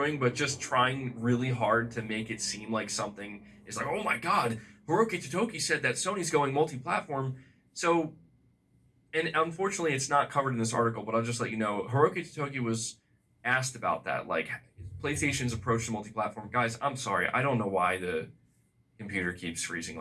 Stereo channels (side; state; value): both; identical; correlation 1.00